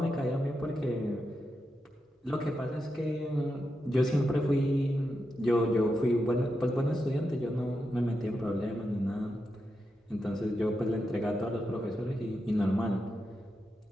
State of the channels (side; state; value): both; normal; correlation 0.87